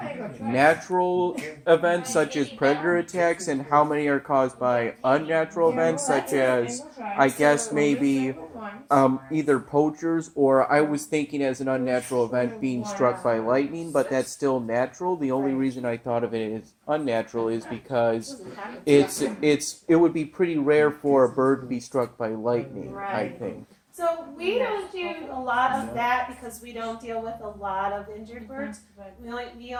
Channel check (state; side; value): identical; both; correlation 1.00